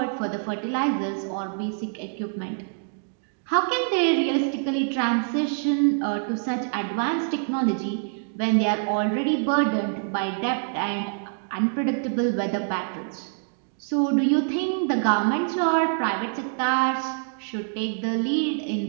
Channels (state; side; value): silent; left; digital silence